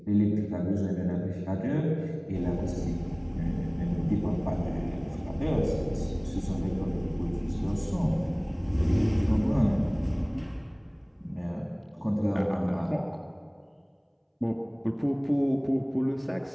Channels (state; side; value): identical; both; correlation 1.00